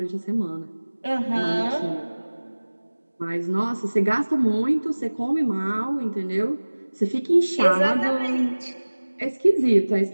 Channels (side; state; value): both; inverted; correlation -1.00